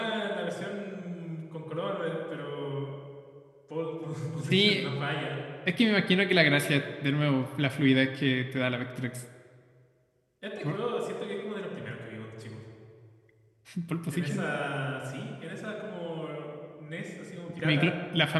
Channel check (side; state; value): both; identical; correlation 1.00